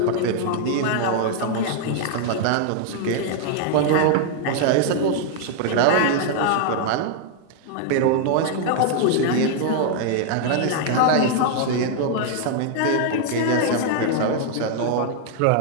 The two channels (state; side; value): different; both; correlation 0.00